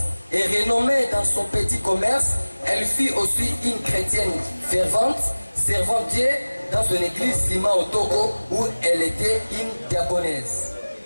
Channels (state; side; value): inverted; both; correlation -1.00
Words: et renommée dans son petit commerce. Elle fut aussi une chrétienne fervente, servant Dieu dans une église Lima au Togo où elle était une diaconesse.